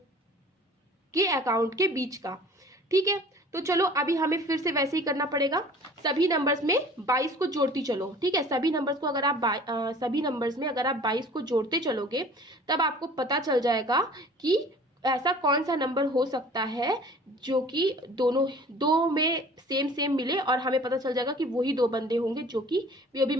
के अकाउंट के बीच का। ठीक है, तो चलो अभी हमें फिर से वैसे ही करना पड़ेगा, सभी नंबर्स में 22 को जोड़ती चलो। ठीक है, सभी नंबर्स को अगर आप सभी नंबर्स में अगर आप 22 को जोड़ते चलोगे तब आपको पता चल जाएगा कि ऐसा कौन सा नंबर हो सकता है जो कि दो में सेम मिले और हमें पता चल जाएगा कि वही 2 बंदे होंगे जो कि बीओबी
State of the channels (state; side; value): normal; both; correlation 0.47